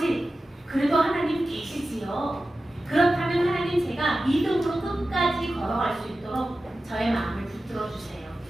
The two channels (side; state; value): both; normal; correlation 0.94